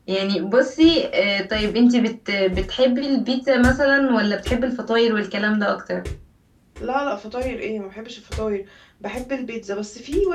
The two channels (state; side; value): identical; both; correlation 1.00